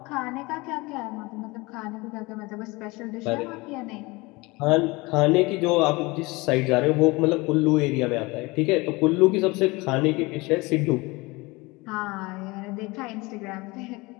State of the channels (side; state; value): right; quieter; 23.7 dB